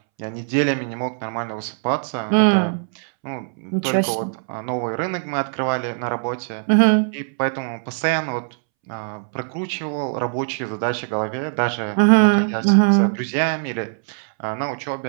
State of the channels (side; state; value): left; silent; 65 dB below the other